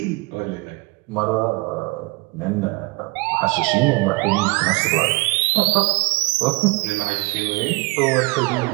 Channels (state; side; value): quieter; left; 25.4 dB